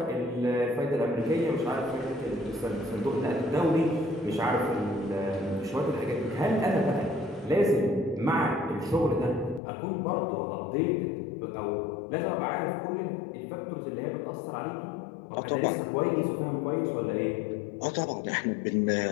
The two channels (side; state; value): right; drops out; at 9.6 s